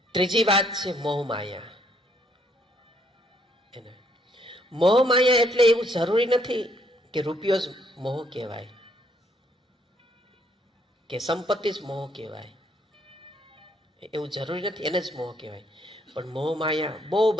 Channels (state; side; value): normal; both; correlation 0.69